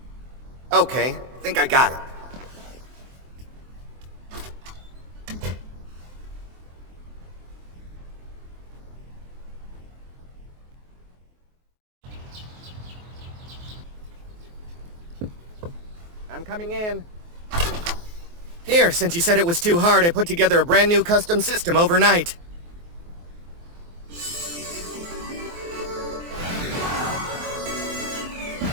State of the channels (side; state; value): left; late; 23 ms